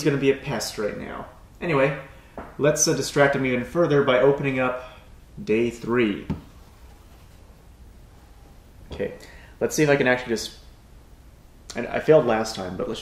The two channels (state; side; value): identical; both; correlation 1.00